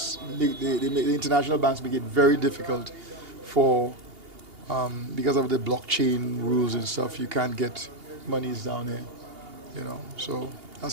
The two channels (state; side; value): late; left; 2.8 ms